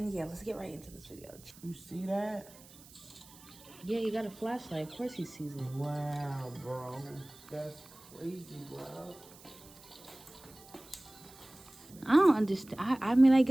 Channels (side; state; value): right; noise; hiss, 21 dB below the sound